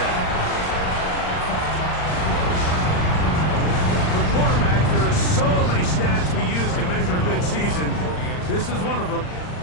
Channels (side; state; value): right; late; 39 ms